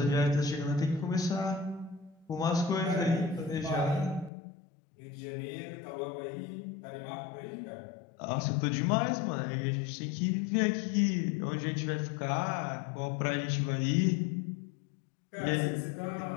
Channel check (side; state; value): right; drops out; at 4.3 s